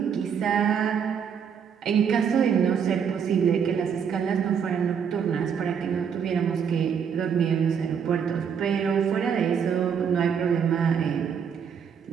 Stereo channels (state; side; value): quieter; left; 7.3 dB